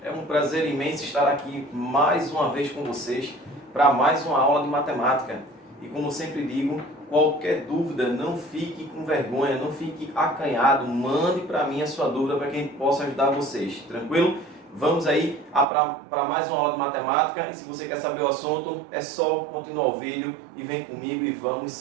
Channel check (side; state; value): left; drops out; at 15.7 s